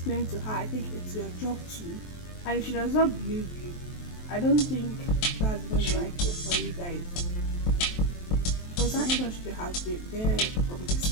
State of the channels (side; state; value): right; late; 23 ms